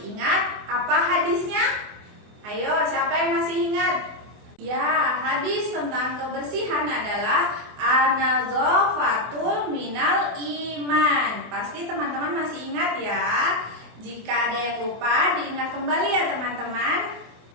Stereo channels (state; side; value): late; left; 24 ms